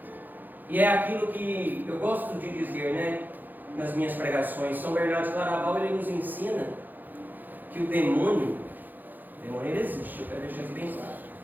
E é aquilo que eu gosto de dizer, né, nas minhas pregações. São Bernardo de Claraval, ele nos ensina que o demônio ele existe, eu quero deixar isso bem claro.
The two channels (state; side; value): late; left; 0.086 ms